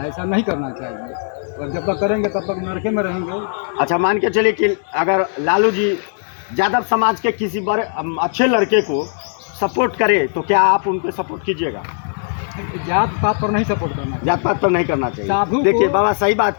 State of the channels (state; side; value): silent; right; digital silence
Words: ऐसा नहीं करना चाहिए, और जब तक करेंगे तब तक नरके में रहेंगे। अच्छा, मान के चलिए कि अगर लालू जी यादव समाज के किसी बड़े अच्छे लड़के को सपोर्ट करे तो क्या आप उनको सपोर्ट कीजिएगा? जात पात पर नहीं सपोर्ट करना चाहिए। जात पात तो नहीं करना चाहिए। साधु को- देखिए बाबा सही बात